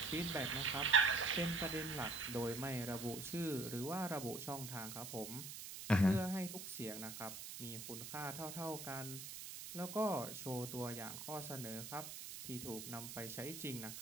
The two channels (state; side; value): noise; right; hiss, 9 dB below the sound